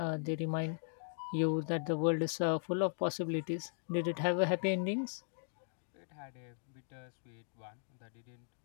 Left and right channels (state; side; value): silent; right; digital silence